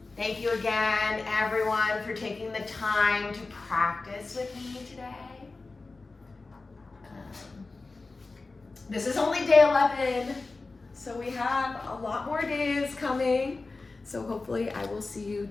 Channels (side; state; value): right; quieter; 3.6 dB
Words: Thank you again, everyone, for taking the time to practice with me today. This is only day 11, so we have a lot more days coming. So hopefully I will see you